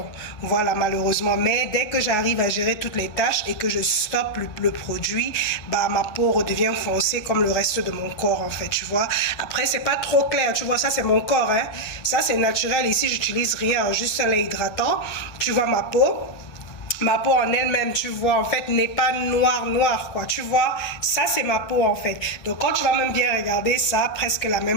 Voilà, malheureusement. Mais dès que j'arrive à gérer toutes les taches et que je stoppe le produit, bah, ma peau redevient foncée comme le reste de mon corps, en fait, tu vois. Après, c'est pas trop clair, tu vois, ça c'est mon corps, hein. Ça c'est naturel. Ici, j'utilise rien, juste un lait hydratant. Tu vois ma peau. Ma peau en elle-même, tu vois, en fait, n'est pas noire, quoi. Tu vois, ça, c'est ma peau, en fait. Donc, quand tu vas même bien regarder, ça a presque la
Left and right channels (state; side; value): late; right; 1.6 ms